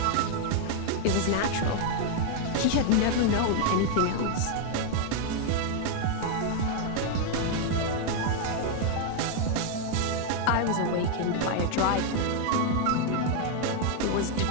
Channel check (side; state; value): both; different; correlation 0.00